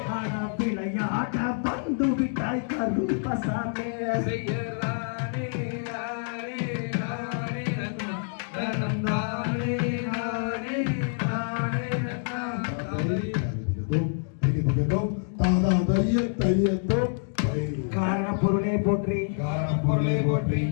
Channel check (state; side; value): silent; right; digital silence